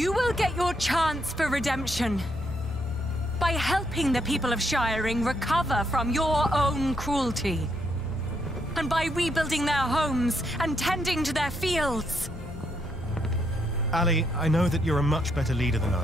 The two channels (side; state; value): both; normal; correlation 0.76